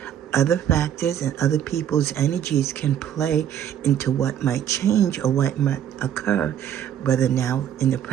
Other factors and other people's energies can play into what might change or what might occur, whether now in the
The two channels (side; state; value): left; quieter; 10.0 dB